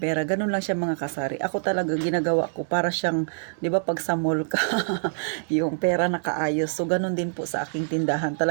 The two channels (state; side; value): silent; left; 61 dB below the other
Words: Ganun lang siya mga kasari. Ako talaga ginagawa ko para siyang, 'di ba pag sa mall ka, yung pera nakaayos. So, ganun din po sa aking tindahan.